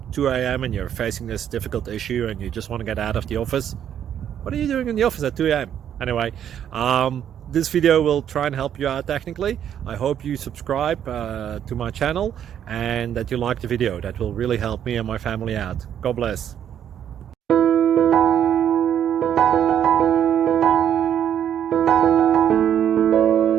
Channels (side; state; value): left; quieter; 9.6 dB